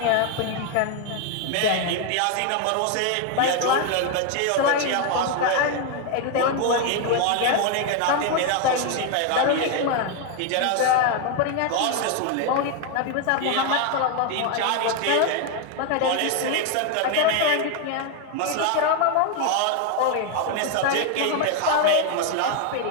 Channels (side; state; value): both; different; correlation 0.01